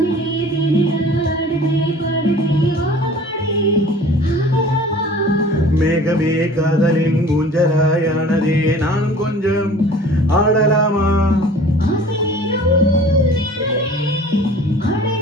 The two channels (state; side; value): normal; both; correlation 0.46